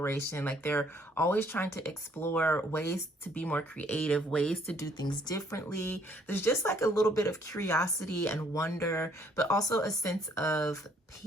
Like they're always trying to explore ways to be more creative, ways to do things differently. There's just like a little bit of curiosity and wonder, but also a sense of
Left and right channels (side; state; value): both; normal; correlation 0.64